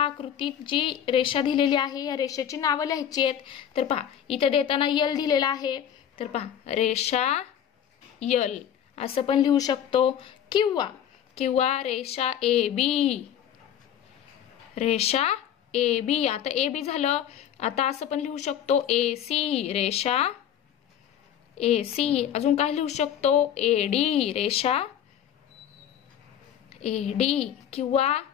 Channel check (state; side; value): quieter; right; 9.7 dB